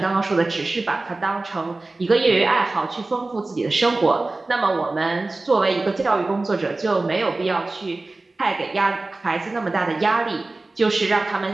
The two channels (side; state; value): left; quieter; 3.2 dB